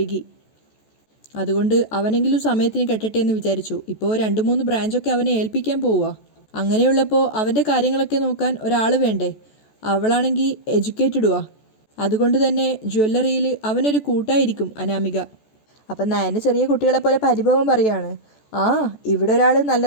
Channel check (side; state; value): right; late; 14 ms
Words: അതുകൊണ്ട് അവനെങ്കിലും സമയത്തിന് കെട്ടട്ടെ എന്ന് വിചാരിച്ചു. ഇപ്പോൾ 2-3 ബ്രാഞ്ചൊക്കെ അവനെ ഏൽപ്പിക്കാൻ പോവുക. അങ്ങനെയുള്ളപ്പോൾ അവൻ്റെ കാര്യങ്ങളൊക്കെ നോക്കാൻ ഒരാൾ വേണ്ടേ? അവളാണെങ്കിൽ എഡ്യൂക്കേറ്റഡുവാ, അതുകൊണ്ട് തന്നെ ജ്വല്ലറിയിൽ അവനൊരു കൂട്ടായിരിക്കും അനാമിക. അപ്പം നയന് ചെറിയ കുട്ടികളെ പോലെ പരിഭവം പറയാണ്, ഇവിടെ ഒരാൾ നല്ല